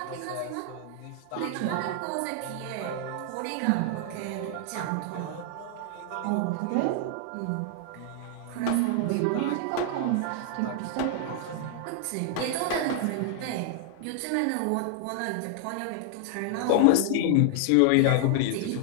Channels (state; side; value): different; both; correlation 0.00